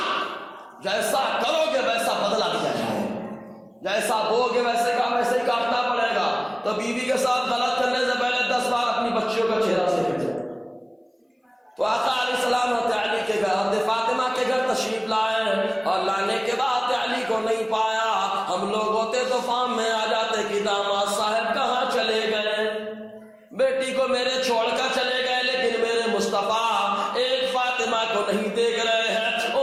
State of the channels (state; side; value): identical; both; correlation 1.00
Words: جیسا کرو گے ویسا بدلہ دیا جائے، جیسا بو گے ویسے ہی کاٹنا پڑے گا۔ تو بیوی کے ساتھ غلط کرنے سے پہلے 10 بار اپنی بچیوں کا چہرہ دیکھ لیں۔ تو آقا علیہ السلام حضرت علی کے گھر، حضرت فاطمہ کے گھر تشریف لائے، اور لانے کے بعد علی کو نہیں پایا۔ ہم لوگ ہوتے تو فام میں آ جاتے کہ داماد صاحب کہاں چلے گئے، بیٹی کو میرے چھوڑ کر چلے گئے، لیکن میرے مصطفیٰ ایک فاطمہ کو نہیں دیکھ رہے ہیں،